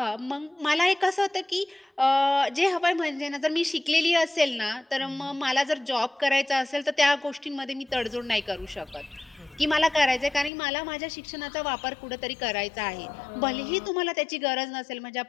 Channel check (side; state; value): right; drops out; at 10.5 s